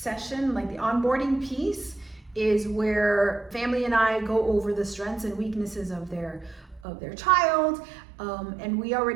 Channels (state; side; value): drops out; left; at 6.9 s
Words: session, like the onboarding piece, is where family and I go over the strengths and weaknesses of their child. And we